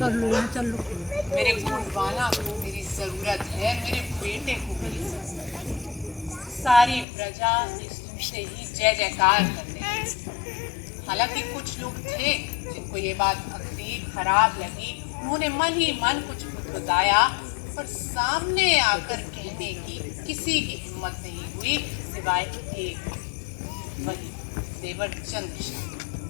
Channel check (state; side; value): drops out; right; at 7.1 s